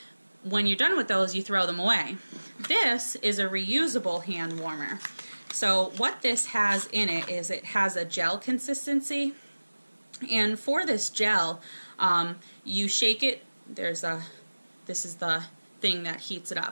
when you're done with those, you throw them away. This is a reusable hand warmer. So what this has in it is it has a gel consistency, and for this gel, you shake it. This is the thing that heats it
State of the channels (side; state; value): both; inverted; correlation -1.00